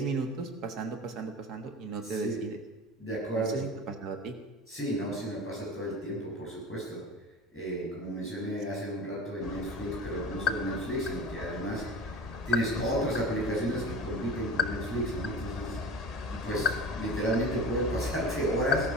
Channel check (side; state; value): both; normal; correlation 0.33